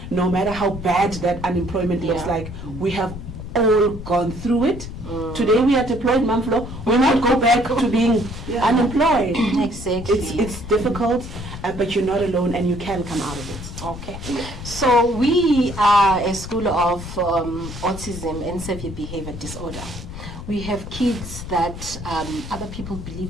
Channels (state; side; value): noise; left; rumble, 10 dB below the sound